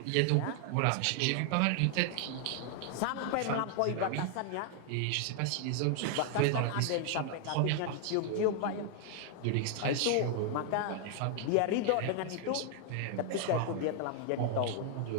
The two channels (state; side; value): different; both; correlation 0.00